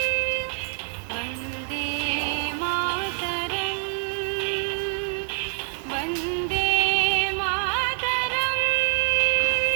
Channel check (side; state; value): left; silent; digital silence